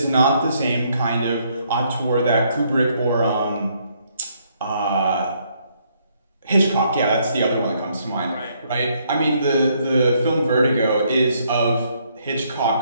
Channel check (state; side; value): inverted; both; correlation -0.70